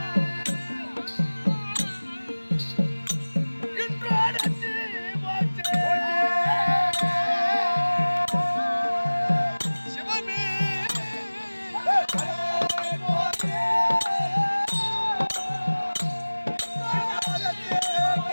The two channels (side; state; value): both; inverted; correlation -1.00